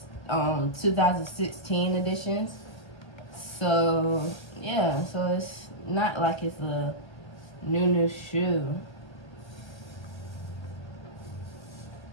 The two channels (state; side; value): late; right; 1.3 ms